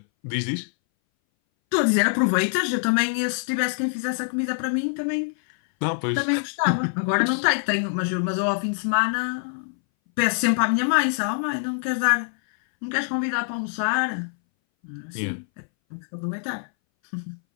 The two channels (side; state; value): right; silent; 60 dB below the other